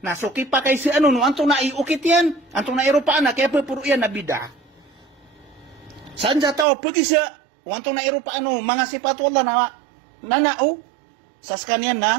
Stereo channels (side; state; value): left; drops out; at 6.7 s